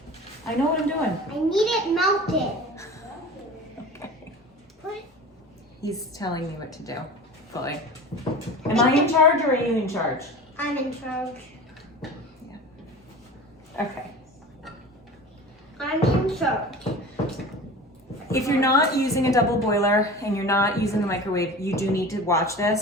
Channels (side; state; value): both; normal; correlation 0.36